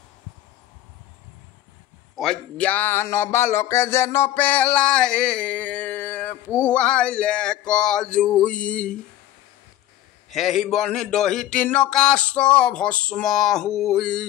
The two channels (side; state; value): right; quieter; 13.2 dB